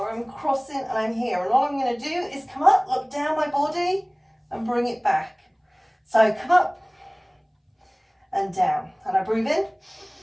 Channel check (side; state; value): both; identical; correlation 1.00